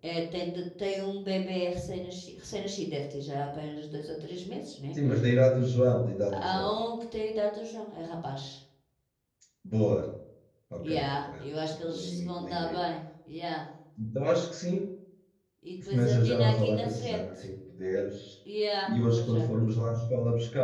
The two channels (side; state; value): both; identical; correlation 1.00